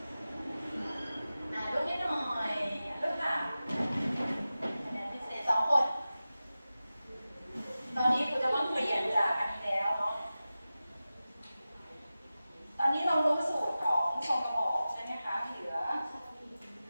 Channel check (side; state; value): both; inverted; correlation -0.95